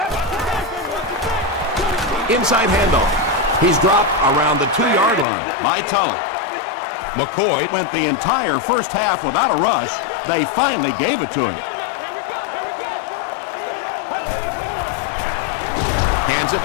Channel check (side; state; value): right; drops out; at 5.2 s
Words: Inside handoff. He's dropped around the 2-yard line by Tulloch. McCoy went the entire first half without a rush. They finally gave it to him. Hands